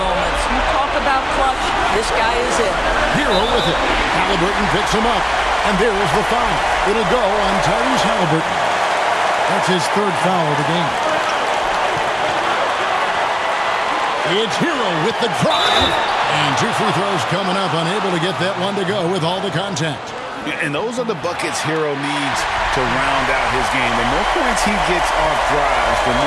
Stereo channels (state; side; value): identical; both; correlation 1.00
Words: You talk about clutch, this guy is it. Hero with it. Halliburton picks him up. And there is the foul. It'll go on Tyrese Halliburton. That's his 3rd foul of the game. It's Hero with the drive. And 2 free throws coming up. Unable to get that one to go with all the contact. And those are the buckets Hero needs to round out his game. The more points he gets off drives, the